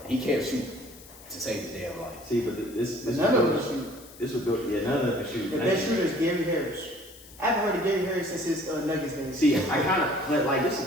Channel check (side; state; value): left; noise; hiss, 20 dB below the sound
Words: He can't shoot to save his damn life. See, but this None of them shoot. This would go. Yeah, none of them can shoot. The best shooter is Gary Harris. I haven't heard of Gary Harris since his Nuggets days. See, I kind of, but like this is the